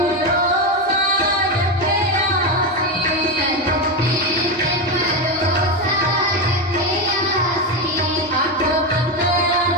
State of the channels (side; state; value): both; normal; correlation 0.13